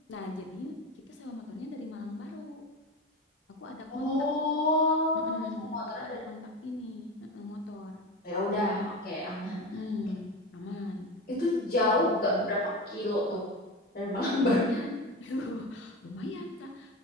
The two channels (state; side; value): normal; both; correlation 0.25